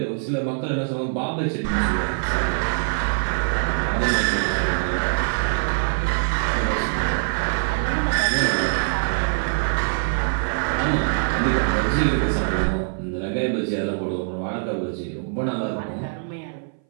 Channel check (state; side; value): silent; left; 59 dB below the other